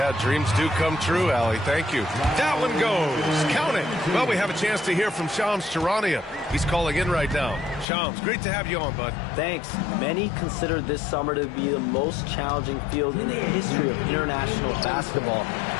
dreams do come true, Allie. Thank you. That one goes. Count it. Well, we have a chance to hear from Shams Charania. He's calling in right now. Shams, great to have you on, bud. Thanks. Many consider this summer to be the most challenging field in the history of international basketball.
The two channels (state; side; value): drops out; right; at 7.9 s